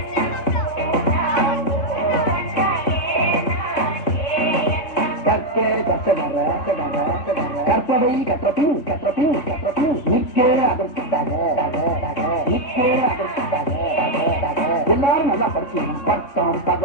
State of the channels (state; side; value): late; right; 3.4 ms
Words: கற்பவை கற்றபின் நிற்க அதற்காக எல்லாரும் நல்லா படிச்சு பட்டம்